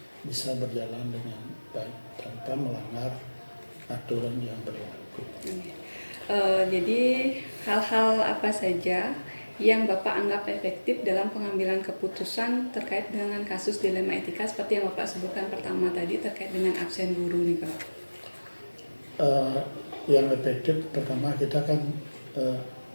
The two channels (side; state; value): both; inverted; correlation -1.00